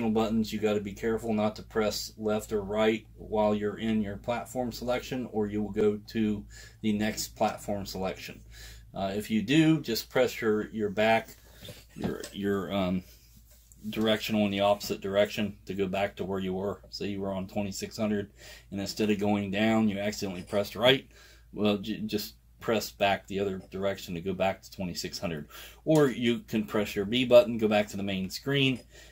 buttons, you got to be careful not to press left or right while you're in your platform selection, or you will go to the next platform selection. If you do, just press your back, your directional in the opposite direction to go back to where you were. Say you were on 2600, and instead of going down, you accidentally pressed right. Well, just press back the other direction to go back to 2600. Or you can press your B button, go back to the main screen,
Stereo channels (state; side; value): identical; both; correlation 1.00